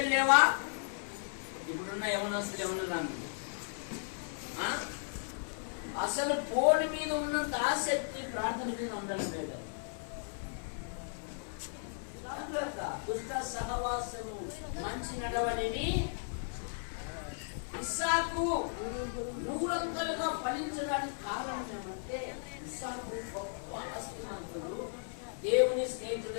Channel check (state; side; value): silent; right; 54 dB below the other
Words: లేవా? ఇప్పుడున్న యవనస్తులు ఎవరు రాను అసలు ఫోన్ మీద ఉన్నంత ఆసక్తి ప్రార్థన మీద ఉండడం లేదు. దుష్ట సహవాసము మంచి నడవడిని ఇస్సాకు నూరంతలుగా ఫలించడానికి కారణం ఏమంటే ఇస్సాకు గొప్ప ఆస్తిమంతుడు, దేవుని